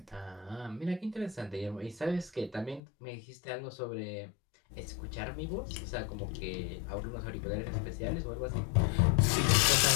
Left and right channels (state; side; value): drops out; right; at 2.8 s